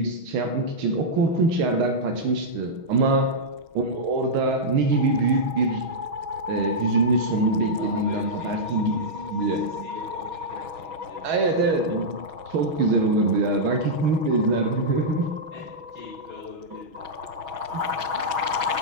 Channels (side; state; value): left; late; 6.3 ms